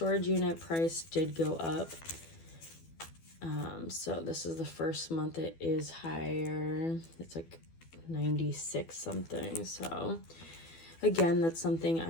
unit price did go up. So this is the first month it is higher. It's like 96 something. So again, that's something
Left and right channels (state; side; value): late; right; 12 ms